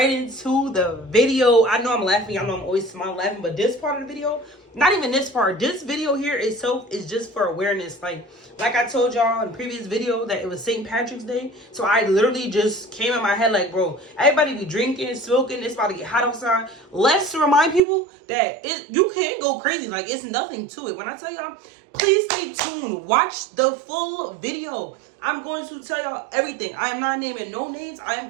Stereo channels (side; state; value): left; drops out; at 17.8 s